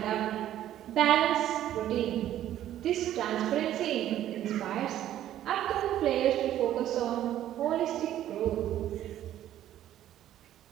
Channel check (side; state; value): left; quieter; 12.2 dB